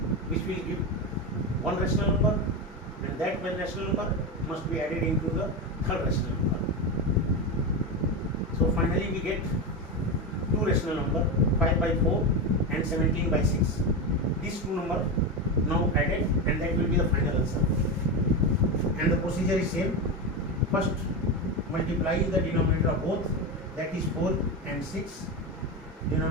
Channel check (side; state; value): both; normal; correlation 0.16